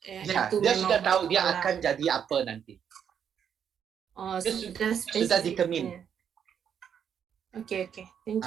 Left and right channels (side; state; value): left; quieter; 8.2 dB